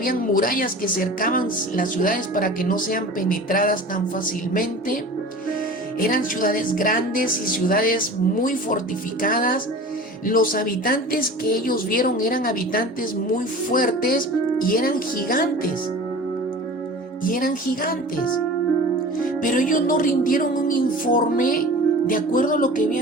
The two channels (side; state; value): both; normal; correlation 0.38